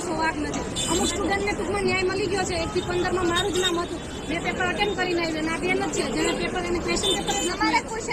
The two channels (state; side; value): identical; both; correlation 1.00